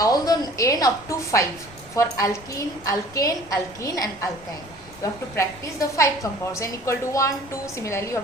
the n up to 5 for alkene, alkane, alkene and alkyne. You have to practice the 5 compounds, n equal to 1, 2. Similarly, you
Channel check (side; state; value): left; noise; rumble, 21 dB below the sound